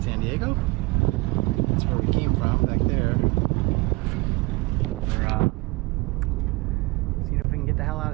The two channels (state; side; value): quieter; left; 24.4 dB